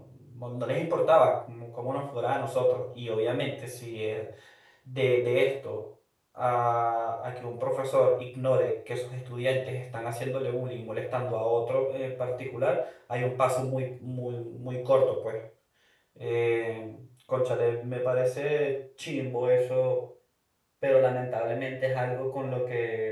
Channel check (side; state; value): both; identical; correlation 1.00